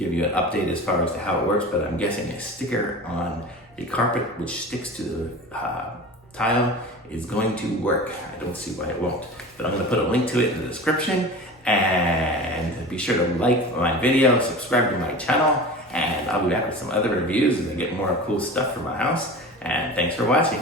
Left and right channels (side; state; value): both; normal; correlation 0.34